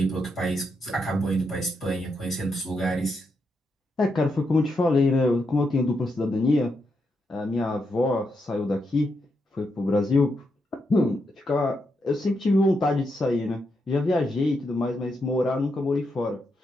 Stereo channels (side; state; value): both; normal; correlation 0.82